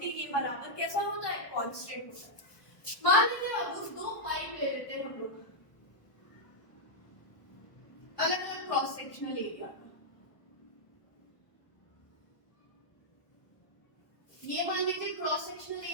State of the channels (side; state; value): right; late; 1.2 ms